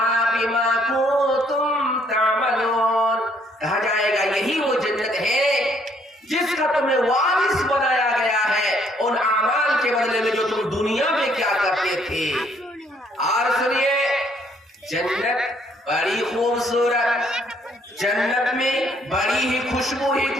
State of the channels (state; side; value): normal; both; correlation 0.66